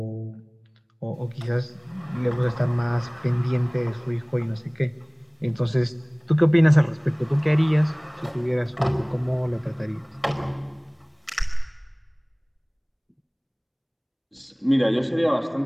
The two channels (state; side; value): identical; both; correlation 1.00